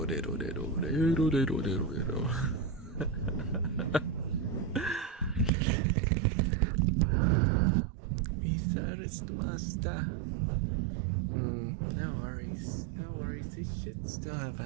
Master. No worries. No worries. They should still have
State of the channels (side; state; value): left; drops out; at 5.5 s